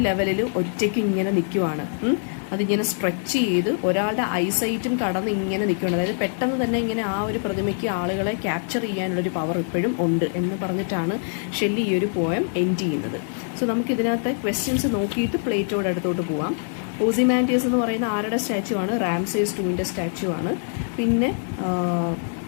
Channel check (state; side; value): silent; right; digital silence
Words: ലെവലിൽ ഒറ്റയ്ക്ക് ഇങ്ങനെ നിൽക്കുവാണ്. അതിങ്ങനെ സ്ട്രെച്ച് ചെയ്ത് ഒരാളുടെ ഐസൈറ്റും കടന്ന് ഇങ്ങനെ നിൽക്കുകയാണ്. അതായത് പെട്ടെന്ന് തന്നെ ഇങ്ങനെ ആ ഒരു പ്രതിമയ്ക്ക് ആളുകളെ ക്യാപ്ചർ ചെയ്യാനുള്ളൊരു പവർ ഇപ്പോഴും ഉണ്ട് എന്ന് പറഞ്ഞിട്ടാണ് ഷെല്ലി ഈ ഒരു പോയം എൻഡ് ചെയ്യുന്നത്. സോ നമുക്കിതിനകത്തെ ക്വസ്റ്റ്യൻസ് നോക്കിയിട്ട് പ്ലേറ്റോയുടെ അടുത്തോട്ട് പോവാം. ഓസിമാൻഡിയസ് എന്ന് പറയുന്ന ആരുടെ സ്റ്റാച്യു ആണ്, റാംസേസ് 2ൻ്റെ സ്റ്റാച്യു ആണ്. പിന്നെ